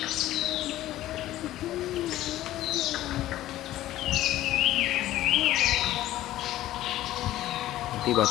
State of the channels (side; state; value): right; quieter; 14.6 dB